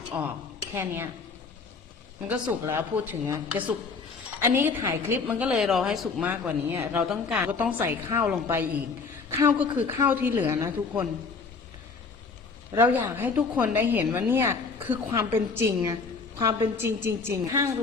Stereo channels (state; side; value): quieter; right; 4.7 dB